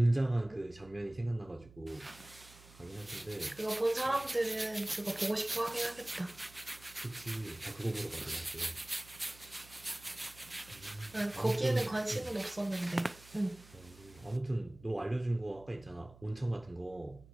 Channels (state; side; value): noise; right; hum, 22 dB below the sound